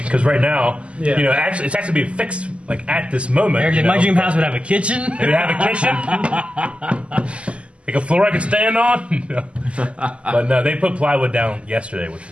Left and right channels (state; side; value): late; left; 0.057 ms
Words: right now, Yeah. actually, it's actually being fixed like at this moment. Eric, you my know. dream house would have a kitchen. It would have a kitchen, like a floor I could stand on. But no, they put plywood down yesterday, which